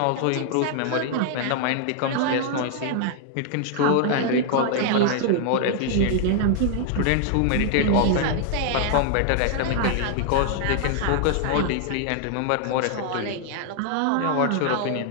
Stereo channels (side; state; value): both; different; correlation 0.00